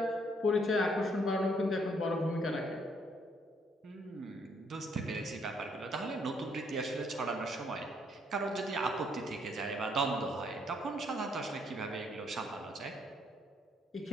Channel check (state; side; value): normal; both; correlation 0.69